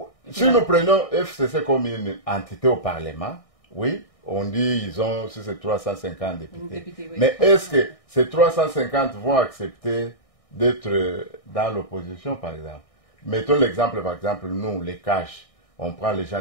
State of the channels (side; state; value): right; late; 1.6 ms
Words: Si nous prenons FCC comme une entité au Parlement, oui, on dit si c'est 350 députés. Oui. Mais est-ce que ces 350 vont accepter d'être dans l'opposition, par exemple? Mettons l'exemple, par exemple, nous, les Cash, on prend les